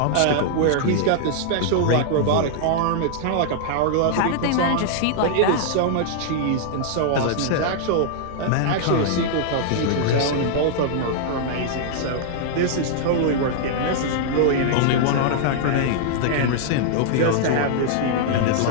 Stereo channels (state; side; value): different; both; correlation -0.01